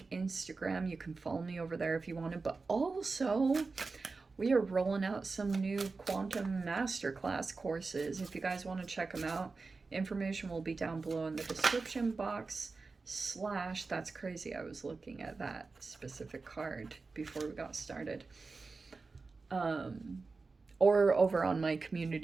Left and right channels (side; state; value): left; quieter; 4.1 dB